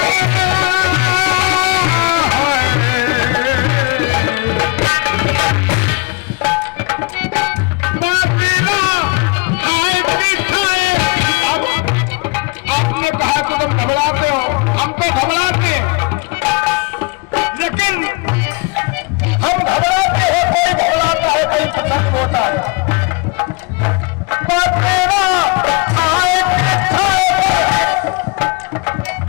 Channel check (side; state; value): right; quieter; 27.7 dB